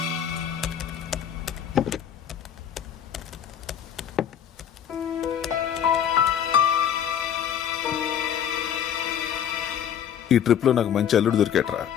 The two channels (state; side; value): quieter; right; 9.1 dB